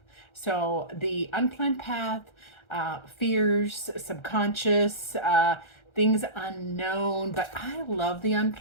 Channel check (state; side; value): late; right; 1.3 ms